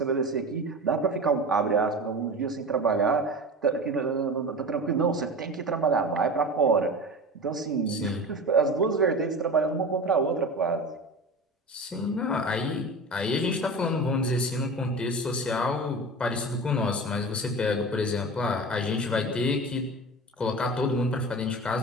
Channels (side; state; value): both; normal; correlation 0.31